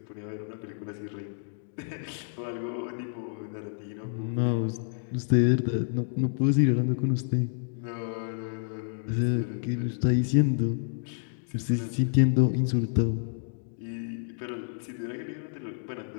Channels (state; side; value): silent; right; digital silence